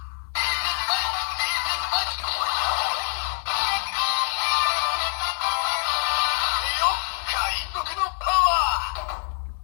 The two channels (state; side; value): silent; right; 62 dB below the other